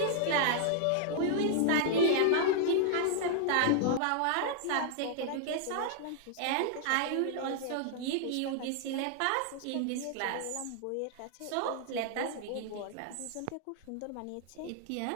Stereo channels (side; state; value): both; different; correlation -0.01